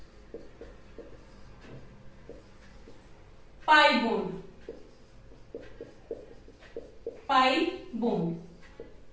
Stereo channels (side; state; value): both; identical; correlation 1.00